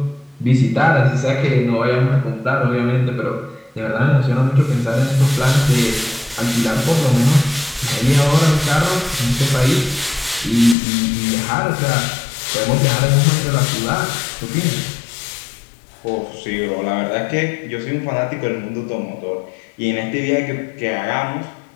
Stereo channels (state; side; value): drops out; right; at 10.8 s